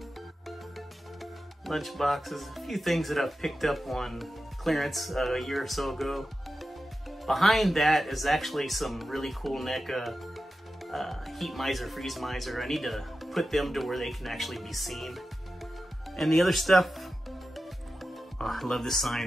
lunch boxes. A few things that I've picked up on clearance a year or so ago. Behind that is actually some really cool NECA heat miser, freeze miser. I need to put them to where they can actually be seen. And the other stuff, oh, I love this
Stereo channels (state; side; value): normal; both; correlation 0.92